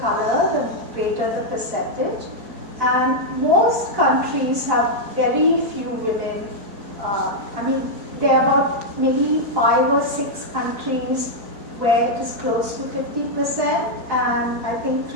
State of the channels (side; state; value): left; late; 4.5 ms